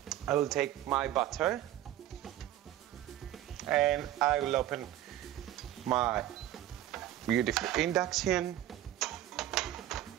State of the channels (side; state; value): left; quieter; 13.0 dB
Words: I will take my butter and I will open my beautiful induction.